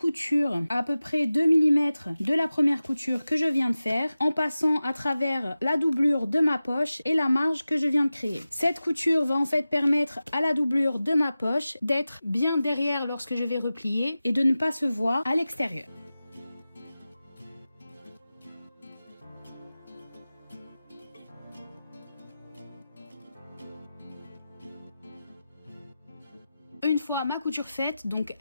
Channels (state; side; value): inverted; both; correlation -0.95